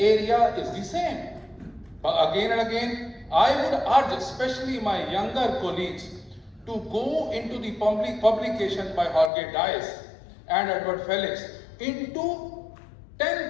is the same. But again and again, I would urge, especially my younger colleagues, to go into the publication by Jorge Dias and Edward Felix into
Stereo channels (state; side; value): drops out; right; at 9.3 s